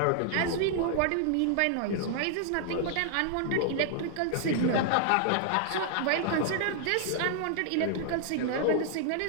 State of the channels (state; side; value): different; both; correlation -0.01